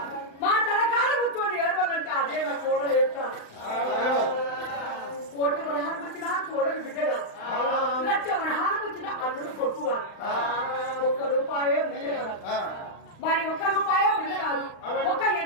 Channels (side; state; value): right; late; 35 ms